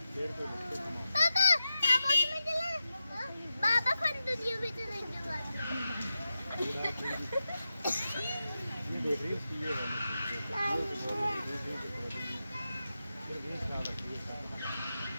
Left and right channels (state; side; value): inverted; both; correlation -0.91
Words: पापा पापा में चला। पापा फन दुनिया में चलेंगे। ये देख रही